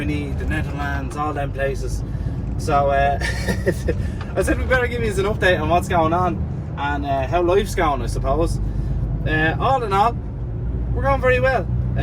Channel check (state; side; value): identical; both; correlation 1.00